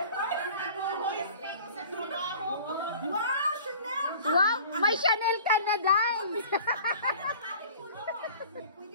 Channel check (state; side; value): inverted; both; correlation -0.44